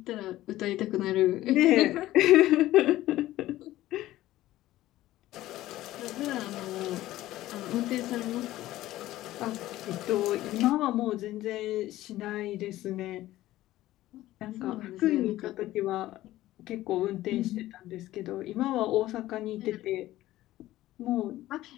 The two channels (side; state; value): right; quieter; 15.5 dB